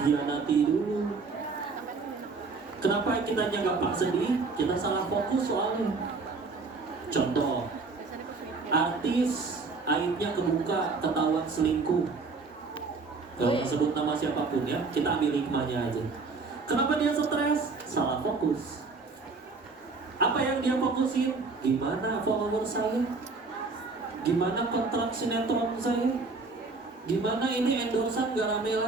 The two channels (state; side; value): quieter; left; 4.1 dB